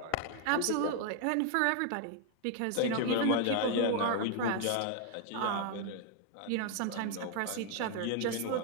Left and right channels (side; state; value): both; different; correlation 0.00